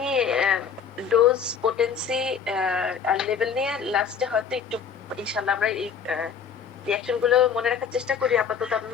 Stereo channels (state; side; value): quieter; right; 6.9 dB